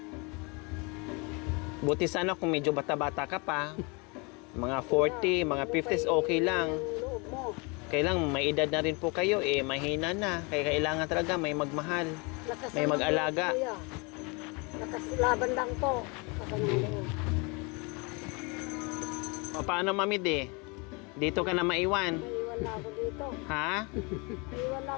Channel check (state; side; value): quieter; right; 29.9 dB